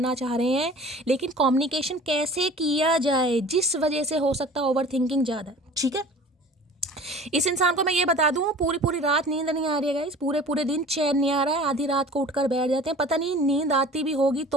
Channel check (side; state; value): both; normal; correlation 0.43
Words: चाह रहे हैं, लेकिन कम्युनिकेशन कैसे किया जाए, जिस वजह से हो सकता है ओवर थिंकिंग ज़्यादा, ठीक है। इस इंसान को मैं ये बता दूं, पूरी पूरी रात नींद नहीं आ रही है गाइस, पूरे पूरे दिन चैन नहीं आ रहा है, आधी रात को उठकर बैठ जाते हैं, पता नहीं नींद आती भी होगी